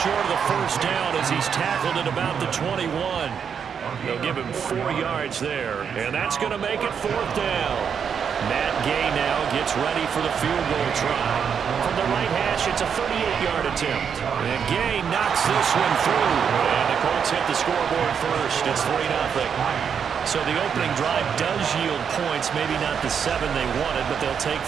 of the first down as he's tackled at about the 21. They'll give him 4 yards there. And that's going to make it 4th down. Matt Gay now gets ready for the field goal try. From the right hash pass. It's a 38-yard attempt. And Gay knocks this one through. And the Colts hit the scoreboard first. It's 3-0. So the opening drive does yield points. Maybe not the 7 they wanted, but they'll take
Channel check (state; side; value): quieter; left; 7.2 dB